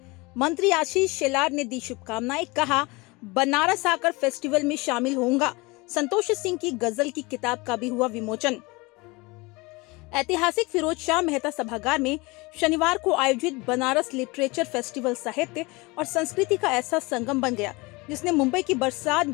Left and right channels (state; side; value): quieter; right; 24.9 dB